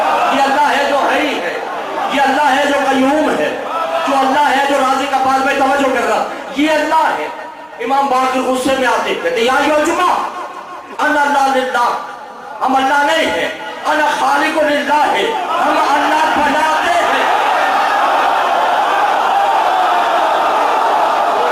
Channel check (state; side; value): identical; both; correlation 1.00